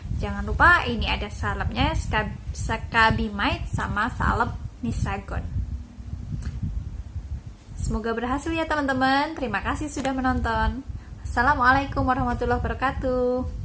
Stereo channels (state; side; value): identical; both; correlation 1.00